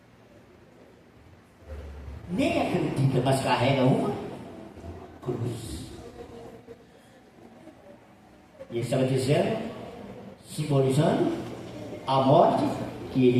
Nem acredita, mas carrega uma cruz. E ele estava dizendo, simbolizando a morte que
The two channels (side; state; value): both; identical; correlation 1.00